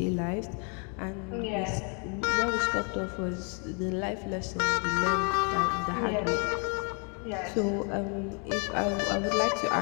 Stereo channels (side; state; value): right; quieter; 37.5 dB